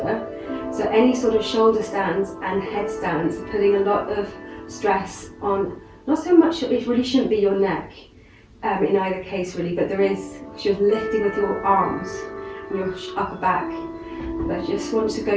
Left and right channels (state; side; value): identical; both; correlation 1.00